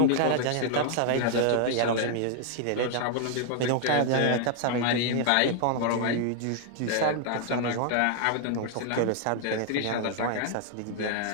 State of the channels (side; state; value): both; different; correlation 0.00